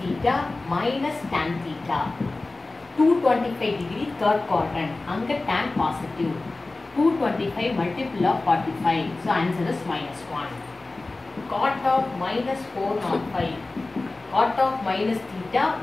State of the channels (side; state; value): right; quieter; 3.2 dB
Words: theta minus tan theta 225 degree third quadrant அங்கே tan positive 225 multiple of 45, so answer is minus 1. Cot of minus 405 cot of minus theta